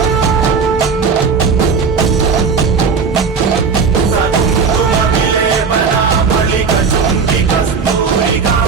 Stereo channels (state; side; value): quieter; left; 5.3 dB